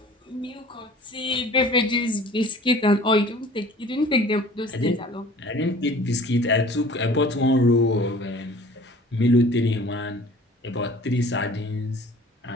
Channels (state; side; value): normal; both; correlation 0.47